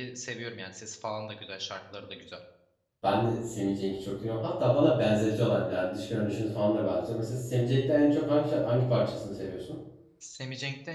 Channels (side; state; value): both; identical; correlation 1.00